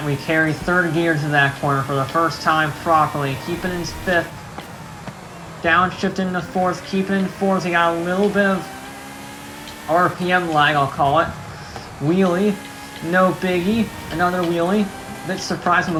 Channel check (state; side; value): identical; both; correlation 1.00